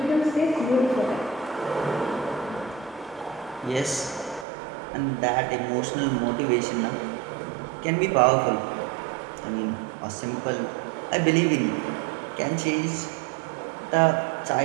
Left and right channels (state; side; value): drops out; left; at 4.5 s